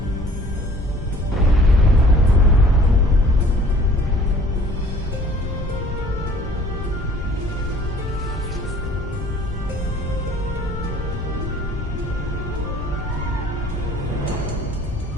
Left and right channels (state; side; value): normal; both; correlation 0.53